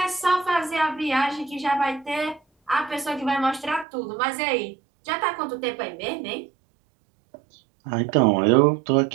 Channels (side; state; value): left; drops out; at 3.9 s